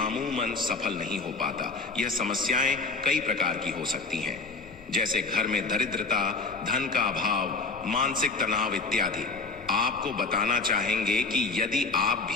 सफल नहीं हो पाता। यह समस्याएं कई प्रकार की हो सकती हैं, जैसे घर में दरिद्रता, धन का अभाव, मानसिक तनाव इत्यादि। आपको बताना चाहेंगे कि यदि आप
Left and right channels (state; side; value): quieter; right; 3.8 dB